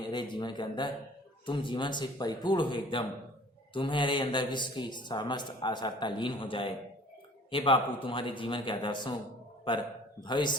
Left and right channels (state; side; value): normal; both; correlation 0.50